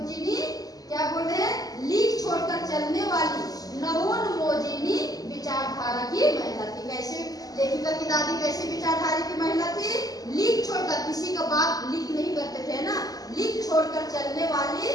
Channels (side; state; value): right; late; 0.18 ms